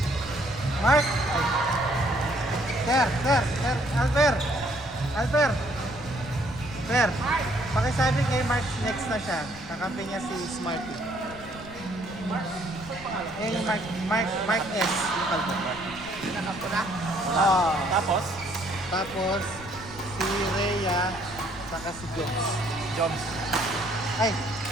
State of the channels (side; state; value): left; noise; rumble, 17 dB below the sound